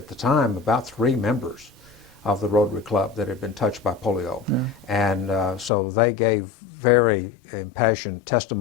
the time about 3 members of the Rotary Club that had been touched by polio. Yeah. And so they gave very impassioned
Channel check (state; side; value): drops out; right; at 5.7 s